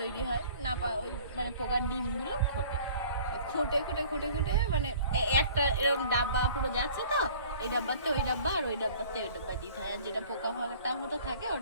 হয়, নাপা ওই মানে পোকার ডিমগুলো খোঁটে, খুঁটে খুঁটে খুঁটে খুঁটে মানে একটা এরকম ডাব্বা পুরো যাচ্ছে, তো এই ডাব্বাতে ওই ডাব্বা আর ওই ডাব্বাতে ওই ডাব্বায় দিতে হয়, আর যেটা পোকা ফাঁকাটা মতো থাকে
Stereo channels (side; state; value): both; inverted; correlation -0.49